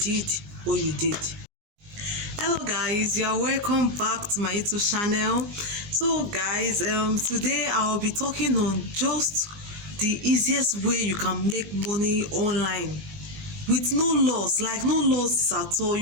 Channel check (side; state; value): left; late; 19 ms